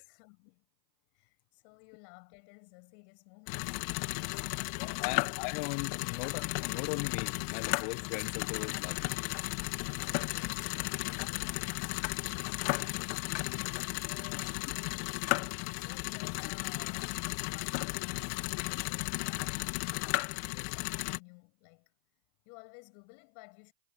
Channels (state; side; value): silent; right; 52 dB below the other